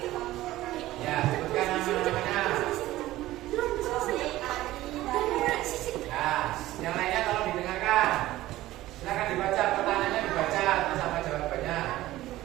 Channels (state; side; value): quieter; left; 16.0 dB